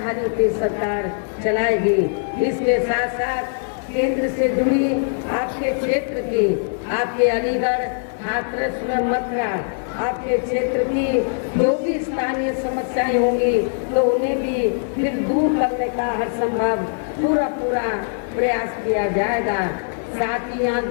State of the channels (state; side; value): silent; right; 65 dB below the other